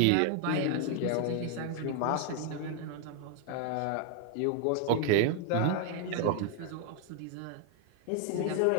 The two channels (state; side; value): different; both; correlation 0.00